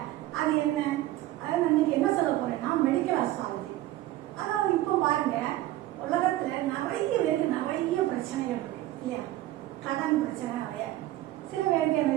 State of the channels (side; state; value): left; quieter; 15.4 dB